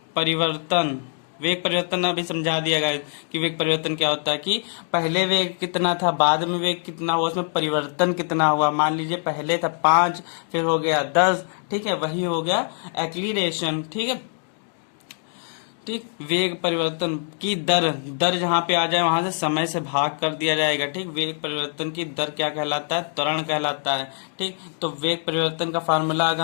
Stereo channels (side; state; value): right; silent; 63 dB below the other